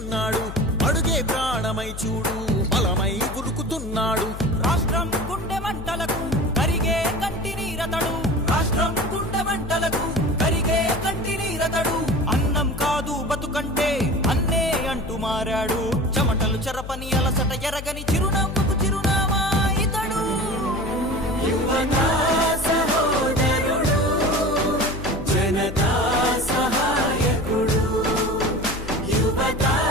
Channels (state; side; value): noise; left; hum, 10 dB below the sound